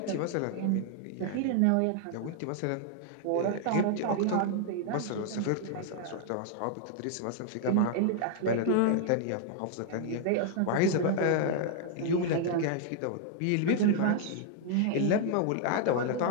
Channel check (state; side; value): different; both; correlation 0.00